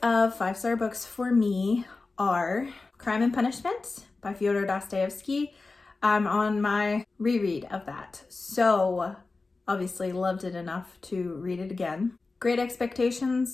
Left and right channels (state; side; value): quieter; right; 3.7 dB